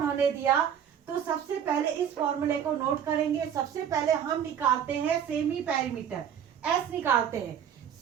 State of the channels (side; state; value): left; quieter; 8.7 dB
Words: दिया, तो सबसे पहले इस फॉर्मूले को नोट करेंगे। सबसे पहले हम निकालते हैं सेमी पेरीमीटर, एस निकालते हैं।